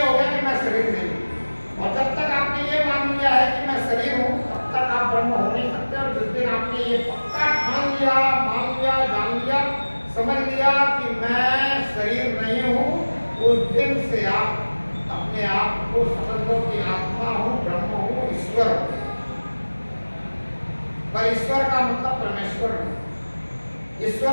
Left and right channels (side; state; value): both; inverted; correlation -1.00